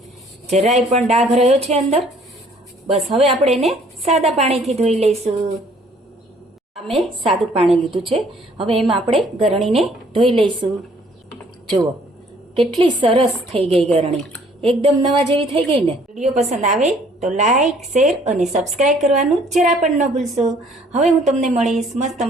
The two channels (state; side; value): normal; both; correlation 0.59